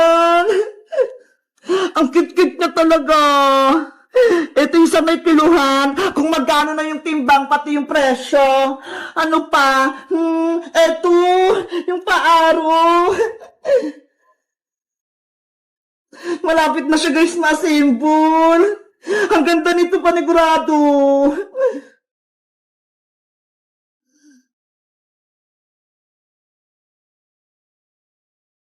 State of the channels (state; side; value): identical; both; correlation 1.00